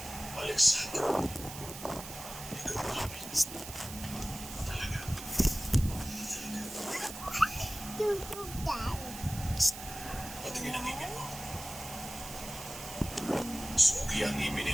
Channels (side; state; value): right; noise; hiss, 11 dB below the sound